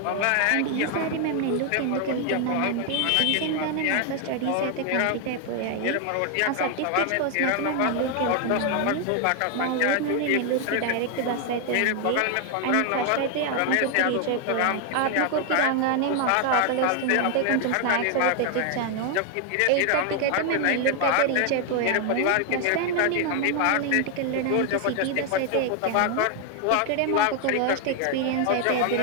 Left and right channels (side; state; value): both; different; correlation 0.01